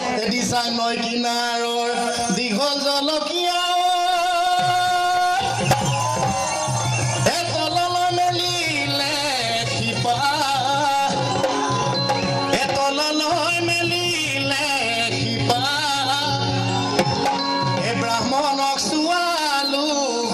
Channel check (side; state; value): both; identical; correlation 1.00